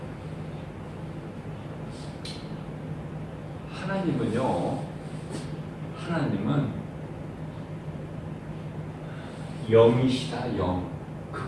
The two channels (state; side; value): identical; both; correlation 1.00